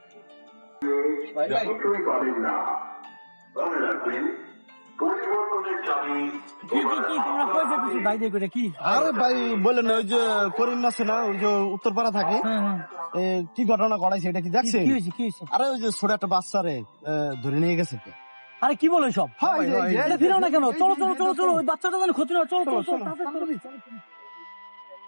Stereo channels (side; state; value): both; inverted; correlation -1.00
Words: যতই পারেন না মনে রাখবেন পরিবর্তনের চাবি আরে ভাই বললেন না, ওই যে করিম আছে না, ওই যে উত্তরপাড়া থাকে, কি ঘটনা ঘটাইছে এটা কি দেখছে? আরে ওই যে ছোট একটা বাচ্চারে ধরে নিয়ে গেছে। আরে কি বলে সব? এটা ফিরাও না কেন? চলো চলো চলো চলো, ওই বাচ্চাটা যেন ক্ষতি না। চলো চলো চলো।